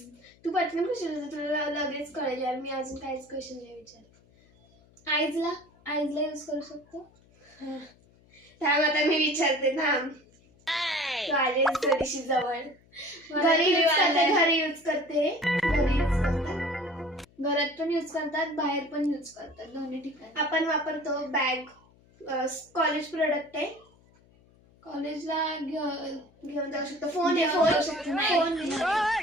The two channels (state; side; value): noise; left; hum, 30 dB below the sound